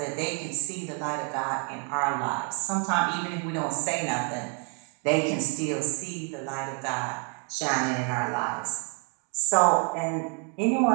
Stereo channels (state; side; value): quieter; left; 37.8 dB